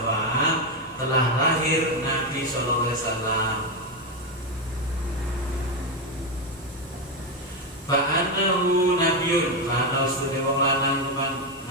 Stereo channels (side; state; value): both; normal; correlation 0.08